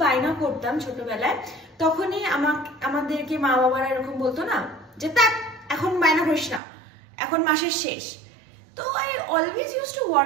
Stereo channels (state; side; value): drops out; left; at 6.6 s